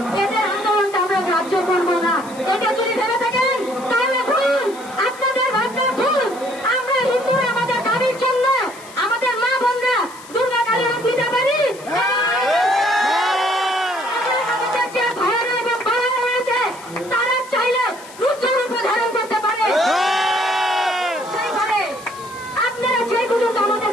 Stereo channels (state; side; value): noise; left; hiss, 19 dB below the sound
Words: এদের আন্দোলনটা আমরা গ্রাহ্য করবো না। এটা যদি ভেবে থাকেন তাহলে ভুল, আপনাদের ভাবনা ভুল। আমরা হিন্দুরা আমাদের দাবির জন্য আমাদের মা বোনরা দুর্গা কালী রূপ নিতে পারি। আমাদের যে ভাইয়েরা এবং বোনেরা রয়েছে তারা চাইলে রুদ্র রূপ ধারণ করতে পারে। সেইভাবে আপনারা যে পর্যন্ত আমাদের